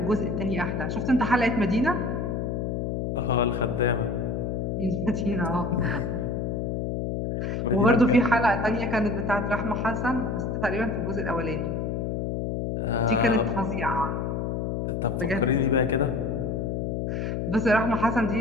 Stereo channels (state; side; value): noise; left; hum, 1 dB below the sound